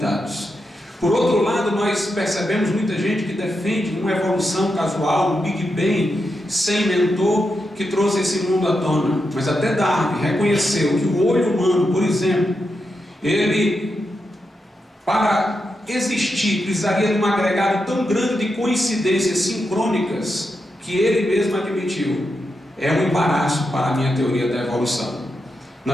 Por outro lado, nós percebemos muita gente que defende uma evolução casual, um Big Bang, sem mentor, que trouxe esse mundo à tona. Mas até Darwin reconheceu que o olho humano, por exemplo, ele, para existir, precisaria de um agregado tão grande de coincidências sincrônicas, que ele mesmo admitiu: é um embaraço para a minha teoria da evolução.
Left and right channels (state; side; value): normal; both; correlation 0.86